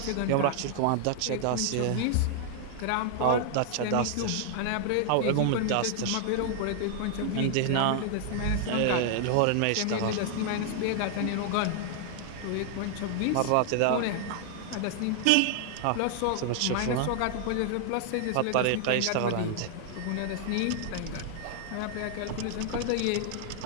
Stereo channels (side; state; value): both; different; correlation 0.00